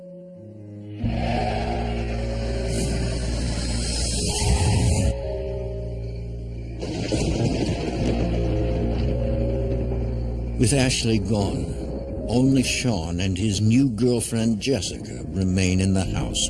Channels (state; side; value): identical; both; correlation 1.00